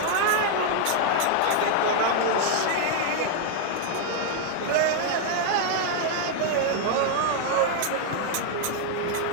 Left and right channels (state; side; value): different; both; correlation 0.00